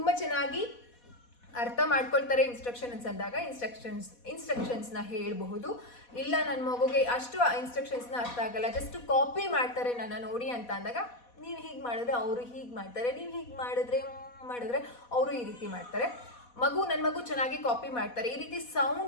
ಚೆನ್ನಾಗಿ ಅರ್ಥ ಮಾಡ್ಕೊಳ್ತಾರೆ ಇನ್ಸ್ಟ್ರಕ್ಷನ್ಸ್ ಅಂದಾಗ ಇನ್ಸ್ಟ್ರಕ್ಷನ್ಸ್ನ ಹೇಳಬಹುದು. ಇಲ್ಲ ನನ್ನ ಮಗುಗೆ ಅಷ್ಟು ಇನ್ಸ್ಟ್ರಕ್ಷನ್ಸ್ನ ಅರ್ಥ ಆಗಲ್ಲ, ಜಸ್ಟ್ ಕಾಪಿ ಮಾಡ್ತಾರೆ ನನ್ನ ನೋಡಿ ಅಂತ ಅಂದಾಗ ನೀವು ಹೀಗೆ ಮಾಡಿದ್ರೆ ಅವರು ಹೀಗೆ ಮಾಡ್ತಾರೆ, ನೀವು ಹೀಗೆ ಮಾಡಿದ್ರೆ ಅವರು ಈ ರೀತಿ ಮಾಡ್ತಾರೆ. ನನ್ನ ಮಗು ಚೆನ್ನಾಗಿ ಕಾಪಿ ಮಾಡ್ತಾರೆ. ಈ ರೀತಿ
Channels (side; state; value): right; late; 4.1 ms